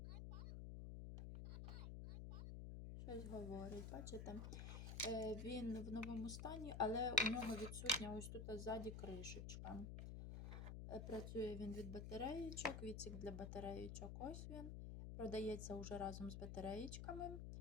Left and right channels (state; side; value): noise; left; hum, 5 dB below the sound